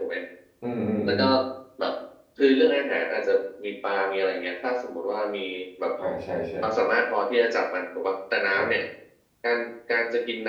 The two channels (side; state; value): both; identical; correlation 1.00